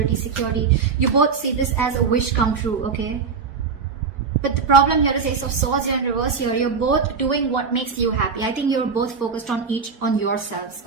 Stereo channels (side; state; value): left; quieter; 5.5 dB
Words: security. You both see this as a wish come true, okay? But the problem here is Ace of Swords here in reverse here. You're both doing what makes you happy. I think you're both focused on yourselves,